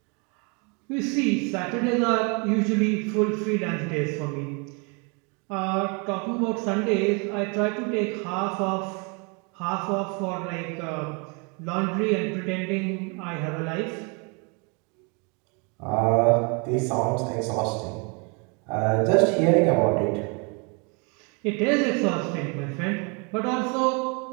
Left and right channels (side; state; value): left; quieter; 33.2 dB